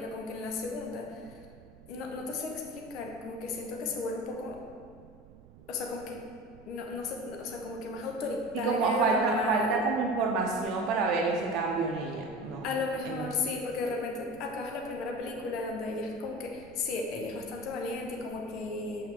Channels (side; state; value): right; noise; rumble, 21 dB below the sound